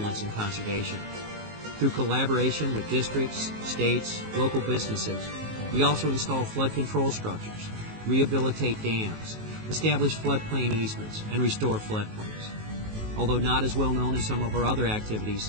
in conservation. Through collaboration with districts, states, local businesses, we also install flood control structures, rehabilitate dams, establish floodplain easements, and restore floodplains. Although not as well known as some of our other activities,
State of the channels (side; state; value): left; late; 19 ms